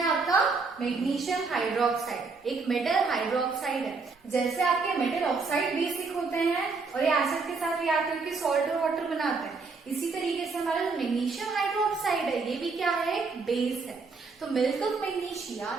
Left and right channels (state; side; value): quieter; left; 4.4 dB